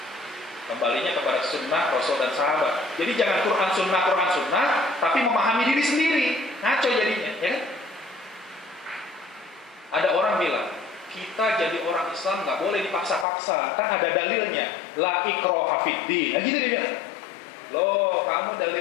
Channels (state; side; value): drops out; right; at 13.2 s